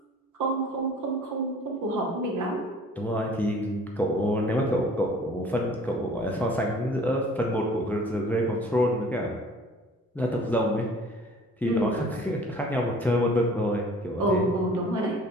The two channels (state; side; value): normal; both; correlation 0.50